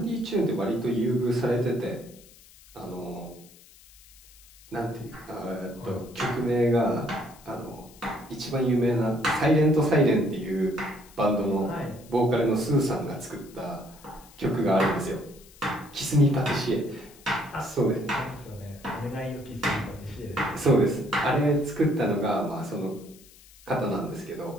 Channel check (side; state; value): left; noise; hiss, 24 dB below the sound